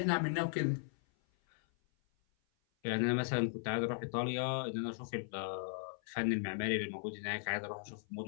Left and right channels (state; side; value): silent; right; 53 dB below the other